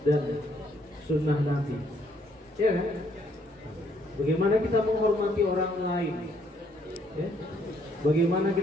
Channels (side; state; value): both; normal; correlation 0.68